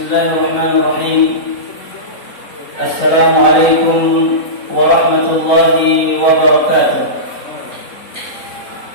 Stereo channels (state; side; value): late; right; 3.9 ms